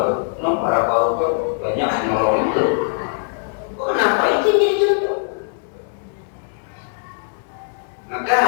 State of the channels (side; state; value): right; silent; digital silence